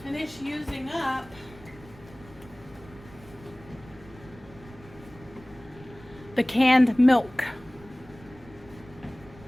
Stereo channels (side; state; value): right; noise; rumble, 21 dB below the sound